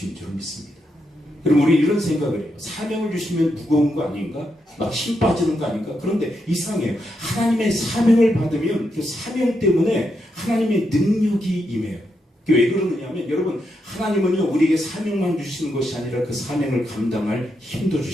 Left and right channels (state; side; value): normal; both; correlation 0.82